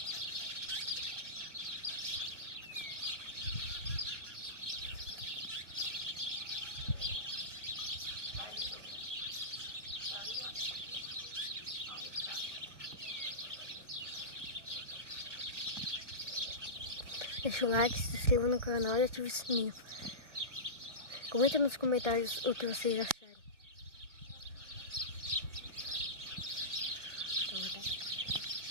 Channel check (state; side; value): late; left; 1.0 ms